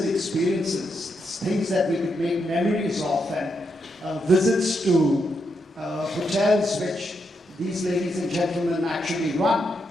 experiences, things that we could make memories of, and visits to hotels which these ladies and gentlemen actually run.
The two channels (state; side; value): normal; both; correlation 0.82